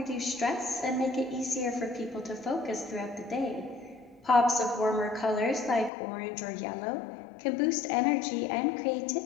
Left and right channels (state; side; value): drops out; right; at 5.9 s